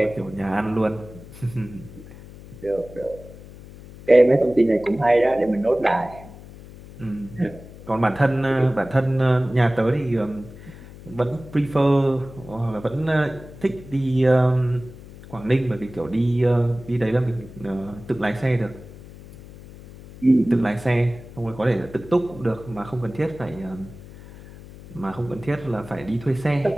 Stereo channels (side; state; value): left; noise; hum, 17 dB below the sound